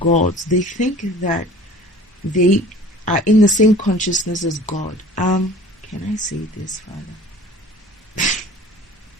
they think that they are in the same consciousness as God. Can I say this, Father?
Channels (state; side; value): normal; both; correlation 0.45